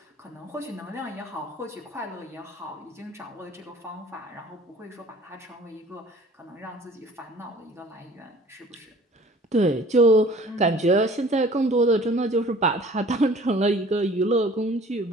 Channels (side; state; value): both; normal; correlation 0.49